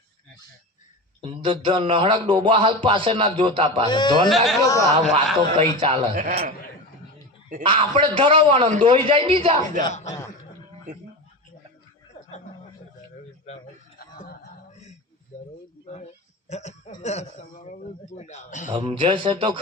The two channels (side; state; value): both; normal; correlation 0.25